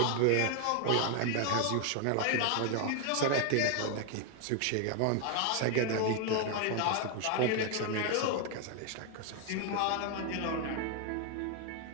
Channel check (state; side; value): different; both; correlation 0.01